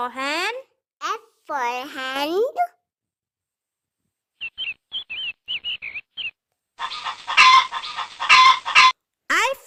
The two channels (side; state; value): both; identical; correlation 1.00